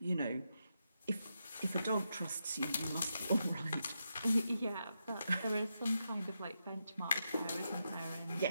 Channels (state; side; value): inverted; both; correlation -0.85